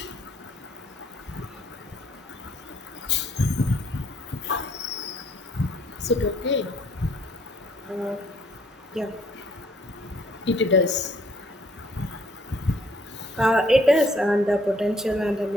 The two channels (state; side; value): normal; both; correlation 0.64